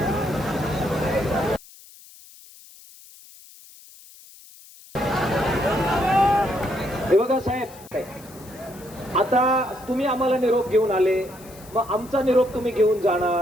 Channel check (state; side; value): noise; left; hiss, 22 dB below the sound